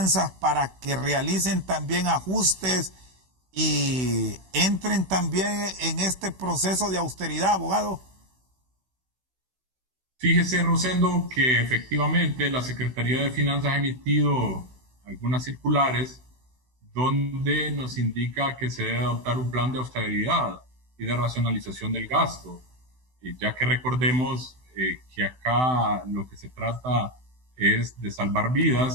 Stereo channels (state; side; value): late; left; 16 ms